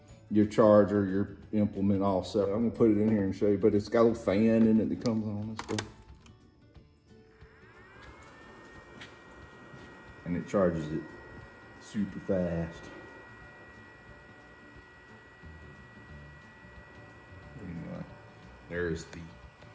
charger, your implement all set. I'm gonna put it in here and show you, but it's got a little fan in it that comes on and stuff. And it charges it super fast. Anyway, there's the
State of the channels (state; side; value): identical; both; correlation 1.00